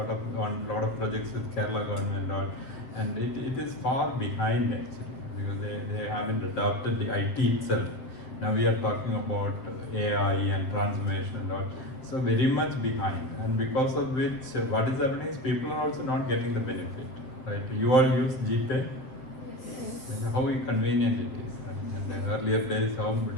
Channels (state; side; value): late; right; 8.0 ms